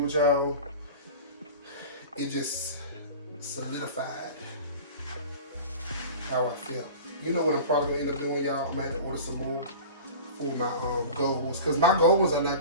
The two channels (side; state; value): both; inverted; correlation -0.36